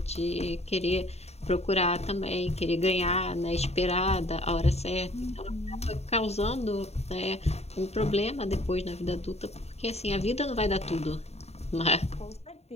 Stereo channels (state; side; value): late; right; 0.31 ms